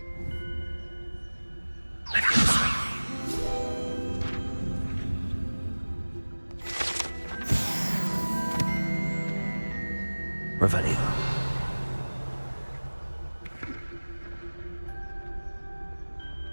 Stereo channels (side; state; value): both; inverted; correlation -1.00